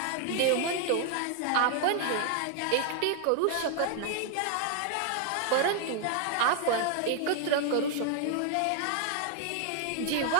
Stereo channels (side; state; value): both; different; correlation 0.00